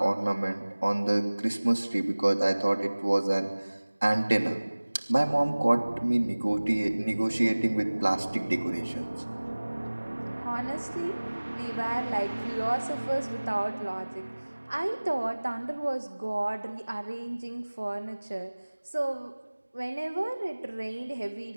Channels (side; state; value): both; inverted; correlation -1.00